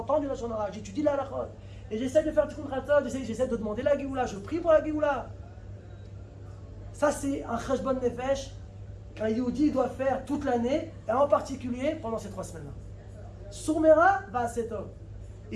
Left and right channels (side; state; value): both; identical; correlation 1.00